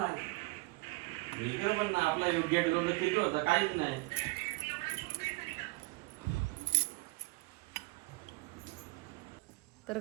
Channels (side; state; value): left; quieter; 23.9 dB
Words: आपला योग्य होता काहीच नाही. तर